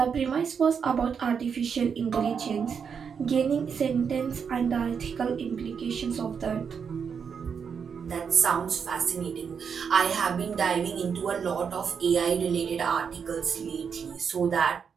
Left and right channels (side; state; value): left; quieter; 6.6 dB